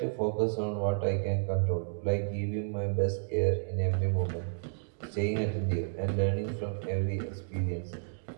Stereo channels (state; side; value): silent; left; digital silence